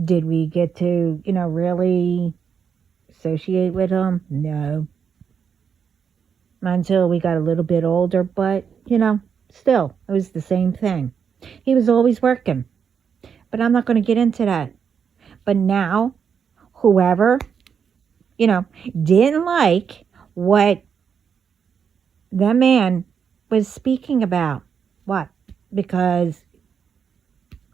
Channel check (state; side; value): quieter; left; 7.0 dB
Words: Did we get to, really associate with him? No. Not until we got a little bit older, but, still, it was the same thing. He was always working, but I'm not going to get into that. But now, whoever, you know, didn't like what that man was speaking about, what? Because